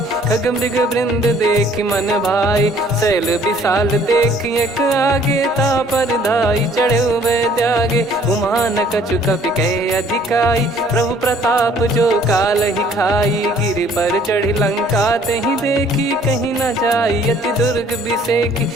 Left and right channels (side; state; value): both; normal; correlation 0.58